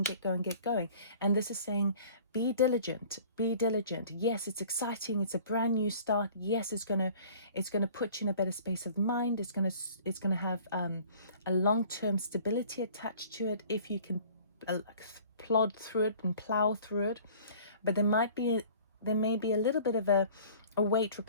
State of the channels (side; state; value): both; inverted; correlation -0.49